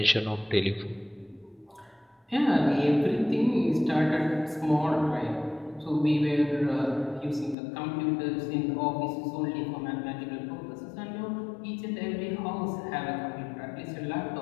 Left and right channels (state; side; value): drops out; right; at 7.6 s